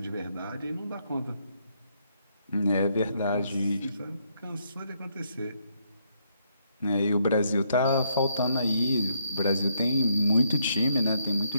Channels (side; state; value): both; inverted; correlation -0.73